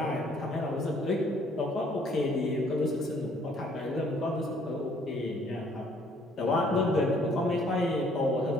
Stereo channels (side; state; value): both; normal; correlation 0.62